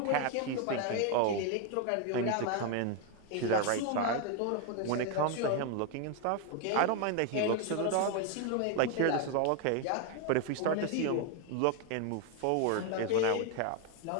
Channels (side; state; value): both; different; correlation 0.01